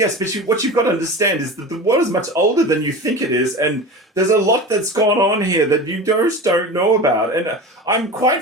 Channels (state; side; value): normal; both; correlation 0.31